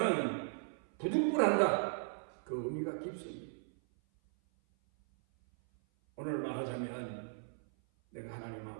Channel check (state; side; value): silent; left; 53 dB below the other